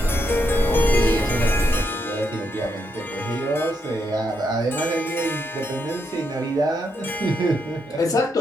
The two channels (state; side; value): normal; both; correlation 0.80